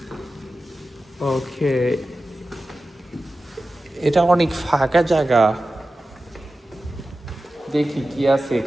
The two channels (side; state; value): both; normal; correlation 0.94